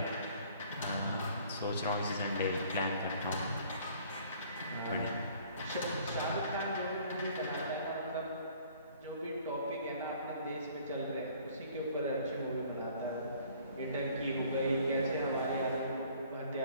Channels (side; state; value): both; inverted; correlation -0.55